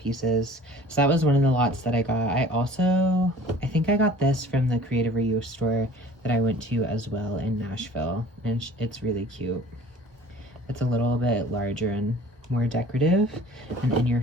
So that was one of the lots that I got. I think I got this from the Creative Reuse store that I went to as well in Nashville, and it's really cute. It's a little bit larger and more decorative and in your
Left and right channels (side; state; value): both; normal; correlation 0.48